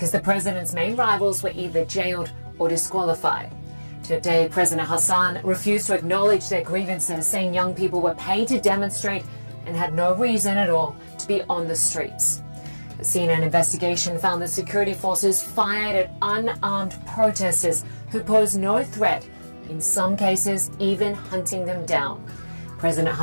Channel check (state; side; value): inverted; both; correlation -1.00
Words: the president's main rivals were either jailed or disqualified. Today, President Hassan refused to acknowledge their grievances, saying young people were paid to demonstrate and had no reason at all to be on the streets. A CNN investigation found that security forces fired at unarmed protesters who posed no threat, in some cases even hunting them down. President